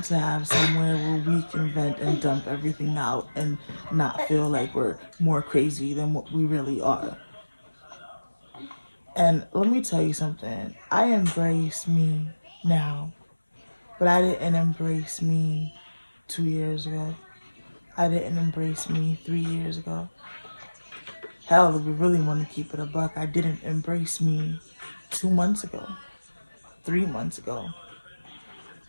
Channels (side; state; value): both; inverted; correlation -1.00